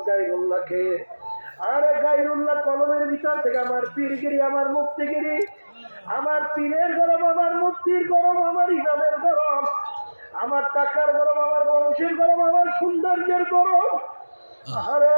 গায়রুল্লাহকে। আরে গায়রুল্লাহ কলমের ভিতর থেকে আমার পীরগিরি, আমার মুফতিগিরি, আমার পীরের গরম, আমার মুফতির গরম, আমার ইমামের গরম, আমার টাকার গরম, আমার বংশের গরম, আমার সৌন্দর্যের গরম, আরে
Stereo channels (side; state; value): both; inverted; correlation -1.00